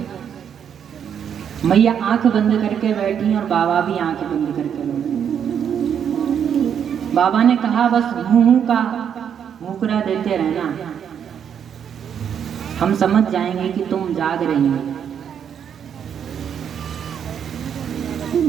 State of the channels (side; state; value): left; quieter; 8.3 dB